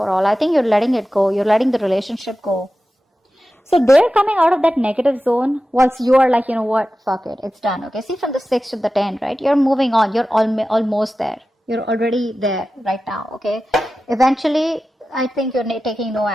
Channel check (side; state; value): both; normal; correlation 0.94